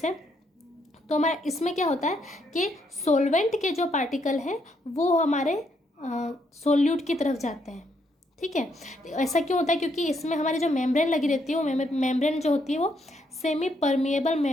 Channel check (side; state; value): both; normal; correlation 0.74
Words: तो हमारा इसमें क्या होता है कि सॉल्वेंट के जो पार्टिकल हैं वो हमारे सोल्यूट की तरफ जाते हैं, ठीक है। ऐसा क्यों होता है, क्योंकि इसमें हमारी जो मेम्ब्रेन लगी रहती है वो मेम्ब्रेन जो होती है वो सेमी परमिएबल